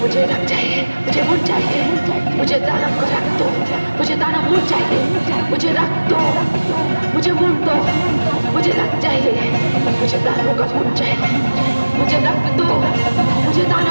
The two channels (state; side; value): inverted; both; correlation -1.00